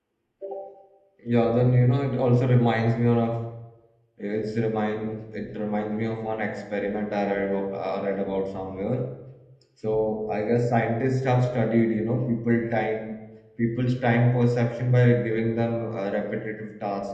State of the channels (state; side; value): identical; both; correlation 1.00